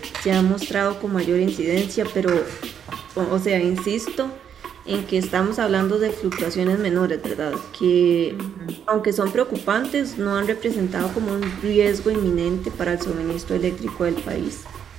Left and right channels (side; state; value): left; quieter; 8.5 dB